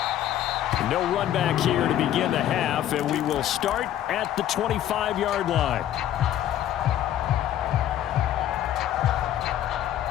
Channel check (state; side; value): quieter; right; 11.8 dB